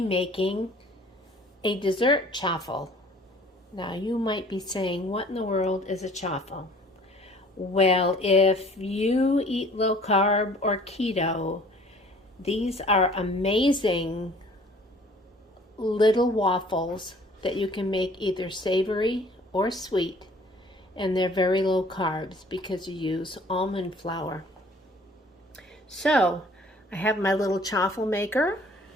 a dessert chaffel. Now you might be saying, what in the world is a chaffel? Well, if you eat low carb or keto, these are amazing little waffles that you can make either savory or sweet. And they're very low carbs because you use almond flour. So I have my little chaffel maker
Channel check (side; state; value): both; normal; correlation 0.53